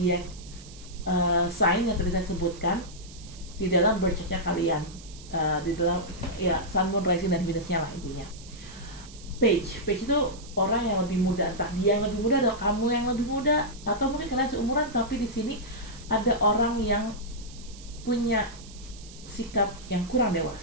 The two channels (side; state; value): right; noise; hiss, 19 dB below the sound